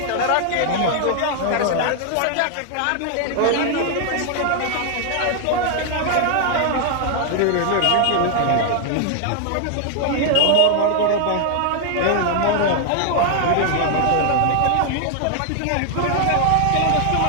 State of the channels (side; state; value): both; different; correlation 0.00